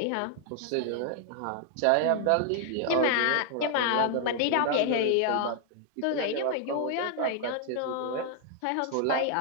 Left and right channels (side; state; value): both; different; correlation 0.00